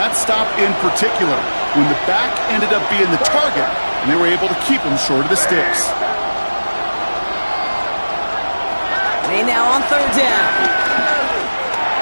stop in particular. When the back ended up being the target, and they were able to keep him short of the sticks. May now on third down.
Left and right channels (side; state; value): both; inverted; correlation -1.00